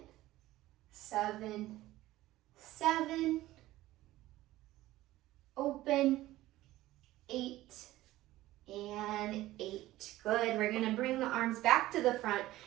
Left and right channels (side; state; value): left; quieter; 16.3 dB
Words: 7, 7. Open, 8, and 8. Good. We're going to bring the arms back to the front.